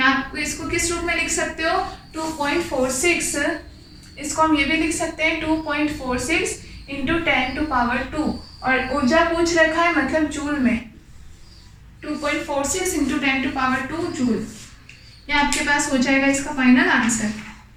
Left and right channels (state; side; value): identical; both; correlation 1.00